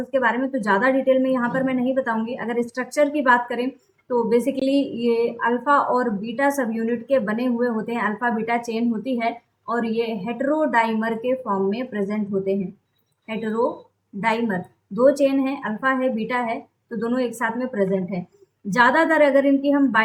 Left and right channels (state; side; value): identical; both; correlation 1.00